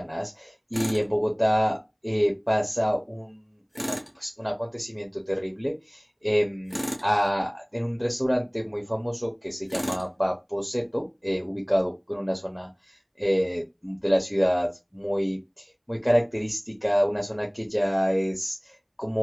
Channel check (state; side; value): identical; both; correlation 1.00